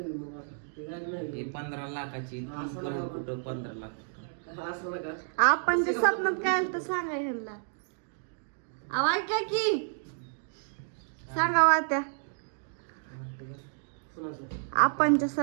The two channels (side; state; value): left; silent; digital silence